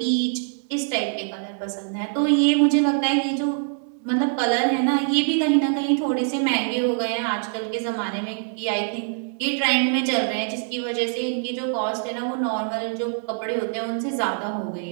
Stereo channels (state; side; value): silent; left; 63 dB below the other